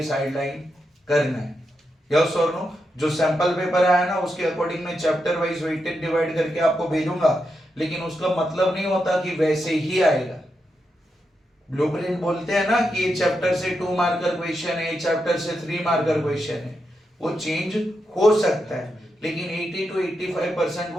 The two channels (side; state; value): both; normal; correlation 0.85